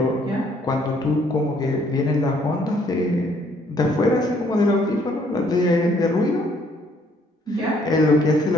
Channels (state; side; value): normal; both; correlation 0.65